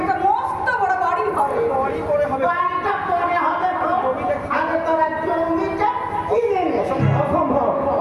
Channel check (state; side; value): identical; both; correlation 1.00